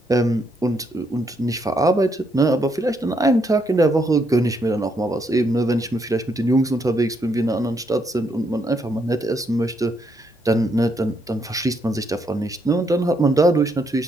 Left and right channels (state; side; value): normal; both; correlation 0.75